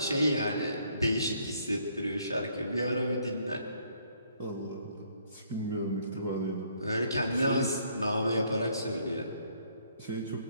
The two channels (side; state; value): both; inverted; correlation -0.67